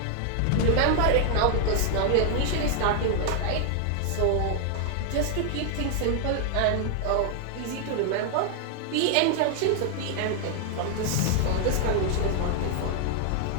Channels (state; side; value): different; both; correlation 0.00